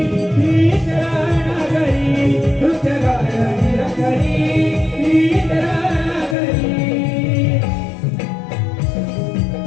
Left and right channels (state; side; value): drops out; right; at 6.4 s